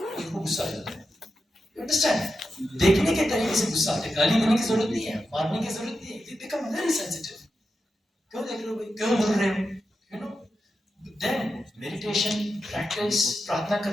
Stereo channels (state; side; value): normal; both; correlation 0.89